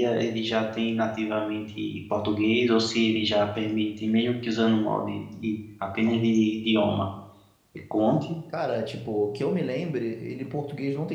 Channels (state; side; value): identical; both; correlation 1.00